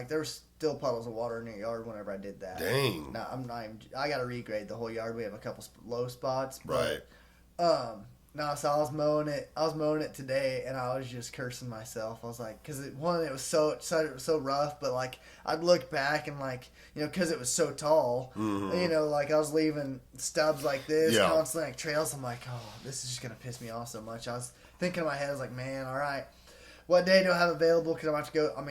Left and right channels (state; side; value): identical; both; correlation 1.00